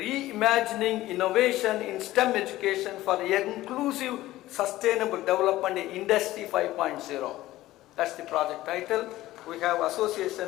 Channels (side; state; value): right; quieter; 16.1 dB